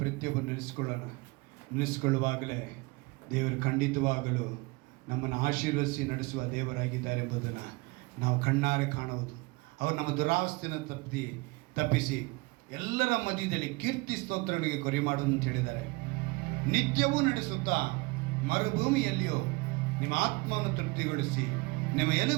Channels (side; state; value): left; quieter; 25.0 dB